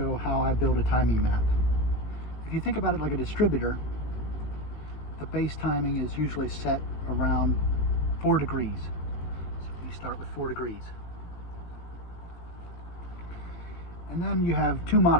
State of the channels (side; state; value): right; late; 18 ms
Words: how I build a timing map. If you think about it like a distributor, the base timing is usually set around 4 degrees. So you start with 4 degrees. And then you have two